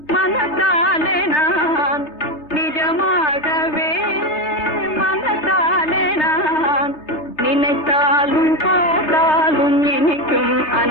மனத்தாலே நான் நிஜமாகவே மனத்தாலே நான் நினைத்தாலும் பாட்டாலும் இனிக்கும்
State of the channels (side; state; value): right; late; 3.3 ms